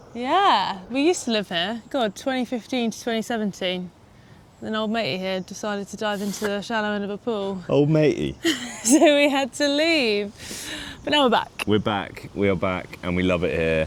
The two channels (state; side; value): identical; both; correlation 1.00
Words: Yeah, we used to live here. God, 2015 to 2017. Then old matey here decided to dive into the shallow end of a pool. Old matey. So we had to leave. But now we're back. We're back, we are back, and we love it here.